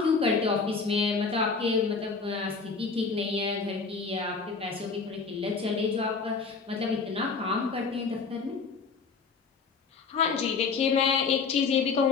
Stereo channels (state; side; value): quieter; right; 4.9 dB